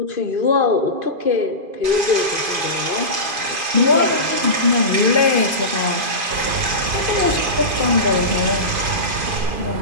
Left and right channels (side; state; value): left; late; 2.5 ms